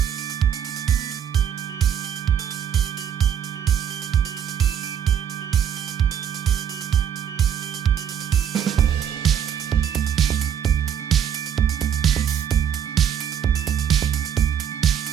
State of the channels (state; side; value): quieter; left; 8.7 dB